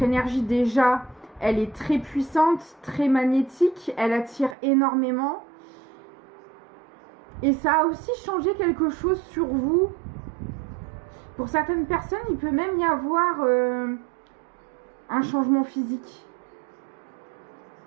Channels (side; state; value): left; drops out; at 4.5 s